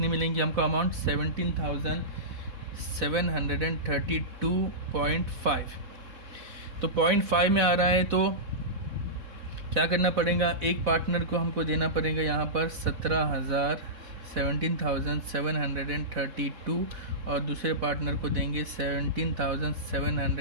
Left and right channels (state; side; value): late; left; 4.1 ms